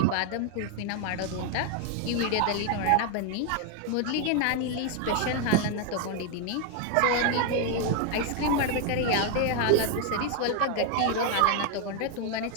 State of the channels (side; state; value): both; different; correlation 0.00